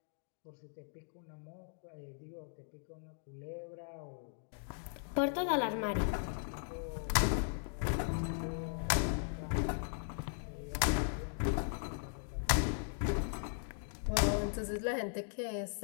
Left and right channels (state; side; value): silent; right; digital silence